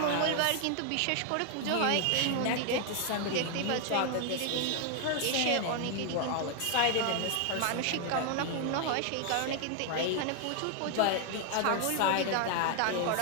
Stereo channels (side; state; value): both; different; correlation 0.00